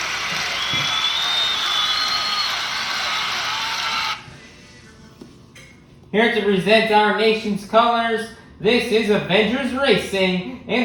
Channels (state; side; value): identical; both; correlation 1.00